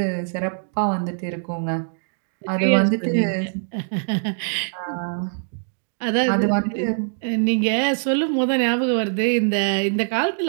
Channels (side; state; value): left; silent; digital silence